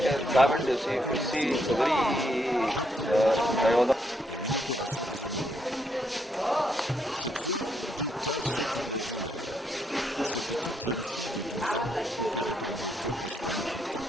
urinaire, une hystérectomie, 21 hernies et une opération des hémorroïdes. Cette fois, 2 cas sortent de l'ordinaire. Cette toute jeune fille de 12 ans, opérée par le docteur Ashwani Gupta.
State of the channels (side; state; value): both; normal; correlation 0.77